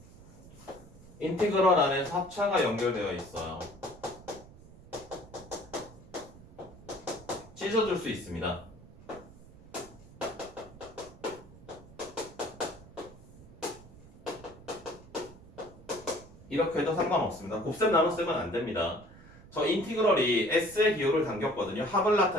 인티그럴 안에 합차가 연결되어 있어요. 찢어줄 수 있습니다. 이렇게 해도 상관없습니다. 곱셈 나눗셈은 안 됩니다. 저 인티그럴이 S의 기호를 당겼거든요. 합을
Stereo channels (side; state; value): right; noise; rumble, 20 dB below the sound